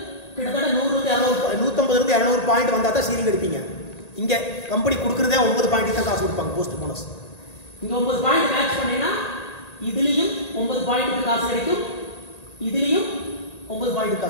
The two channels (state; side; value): late; right; 1.9 ms